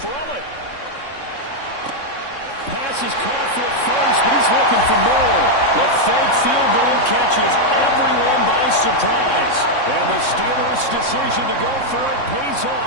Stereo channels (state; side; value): late; right; 3.6 ms